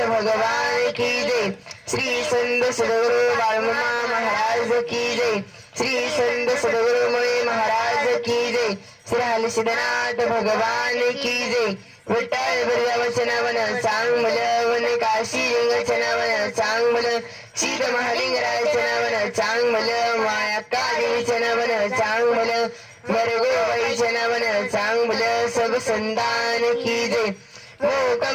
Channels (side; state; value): both; identical; correlation 1.00